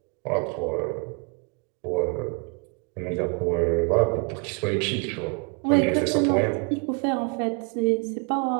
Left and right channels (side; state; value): left; quieter; 34.7 dB